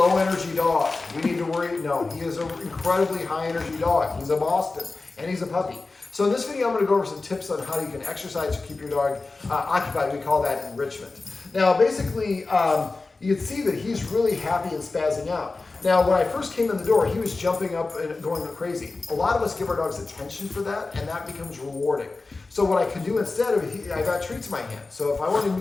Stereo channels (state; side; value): quieter; right; 3.7 dB